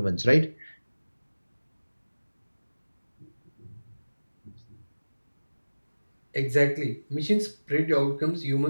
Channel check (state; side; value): inverted; both; correlation -1.00